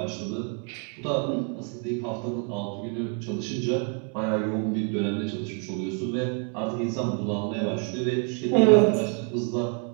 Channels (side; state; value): left; quieter; 36.5 dB